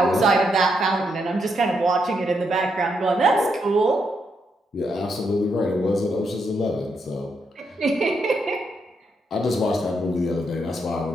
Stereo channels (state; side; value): normal; both; correlation 0.79